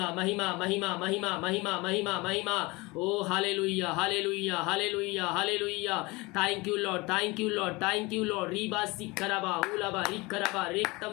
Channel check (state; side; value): quieter; right; 23.7 dB